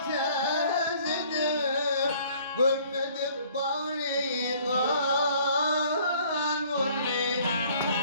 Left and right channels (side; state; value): both; inverted; correlation -0.56